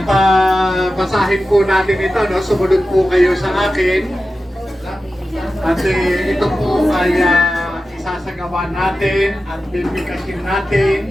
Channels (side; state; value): both; normal; correlation 0.93